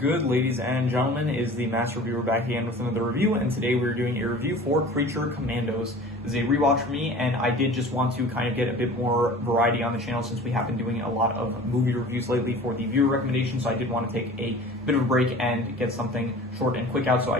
ladies and gentlemen, is the Master Reviewer back again with another review, and today we're doing a review for Creature Commandos. This is a rewatch for me, and I did just want to kind of get a bit more variety on the channel since we have been doing a lot of movie reviews lately for the viewer recommendations, so I did want to take a bit of a break and get something short and quick out, so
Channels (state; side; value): normal; both; correlation 0.41